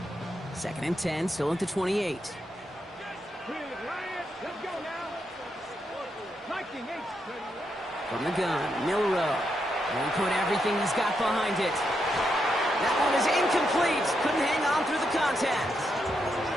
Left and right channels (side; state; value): both; normal; correlation 0.82